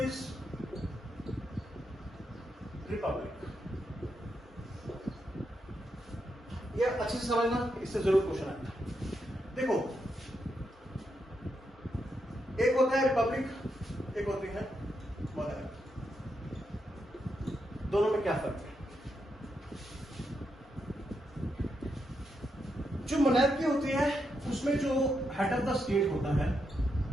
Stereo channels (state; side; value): normal; both; correlation 0.82